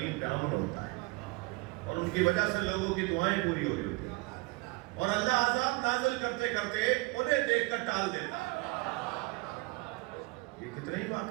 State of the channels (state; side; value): quieter; left; 25.7 dB